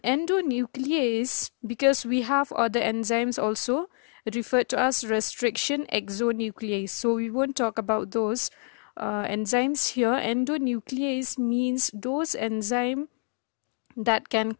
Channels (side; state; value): right; quieter; 37.3 dB